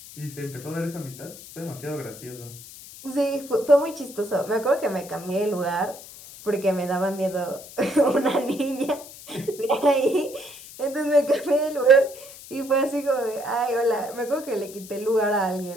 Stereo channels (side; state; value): left; noise; hiss, 16 dB below the sound